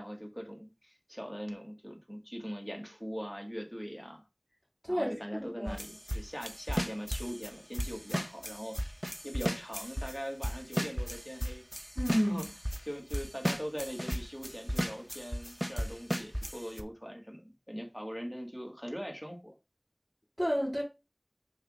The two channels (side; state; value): both; identical; correlation 1.00